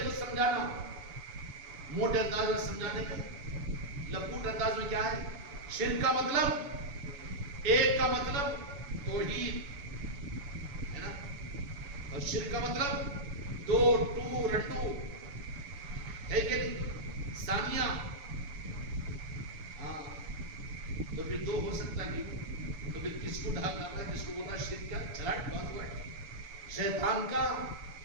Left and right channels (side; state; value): left; late; 6.9 ms